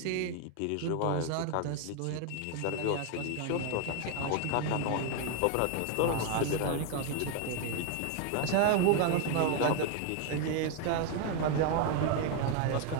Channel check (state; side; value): different; both; correlation 0.01